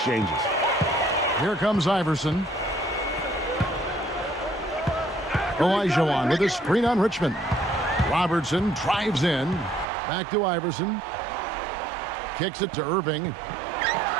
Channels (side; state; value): left; drops out; at 9.9 s